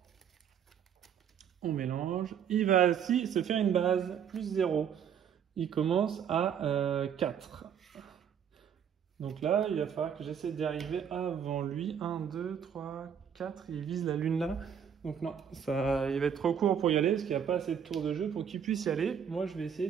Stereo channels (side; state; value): left; quieter; 8.1 dB